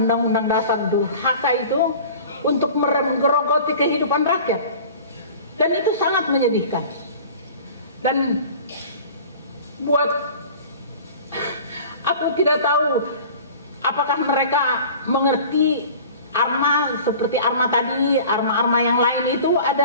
undang-undang dasar durhaka itu untuk menggerogoti kehidupan rakyat. Dan itu sangat menyedihkan. Dan buat aku tidak tahu apakah mereka mengerti Arma seperti Arma tadi, Arma-Arma yang lain itu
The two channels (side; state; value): both; inverted; correlation -0.42